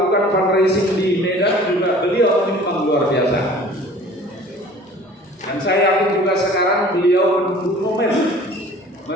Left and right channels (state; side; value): normal; both; correlation 0.47